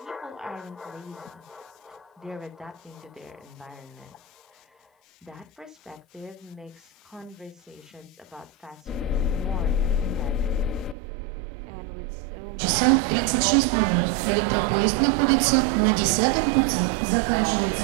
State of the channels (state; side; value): drops out; left; at 11.0 s